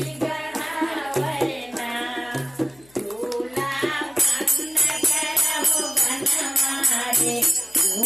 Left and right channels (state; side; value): noise; left; hum, 28 dB below the sound